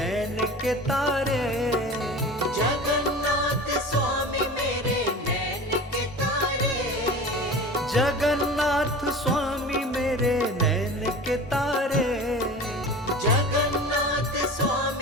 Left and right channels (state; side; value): normal; both; correlation 0.35